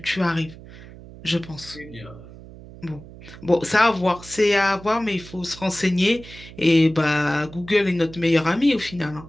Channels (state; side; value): noise; right; hum, 17 dB below the sound